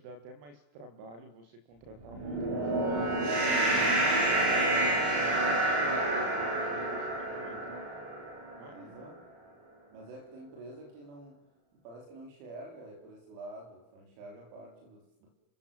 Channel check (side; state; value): left; late; 35 ms